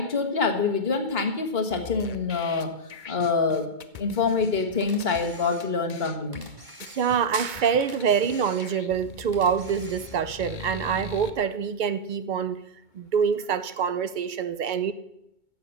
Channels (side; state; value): left; late; 2.2 ms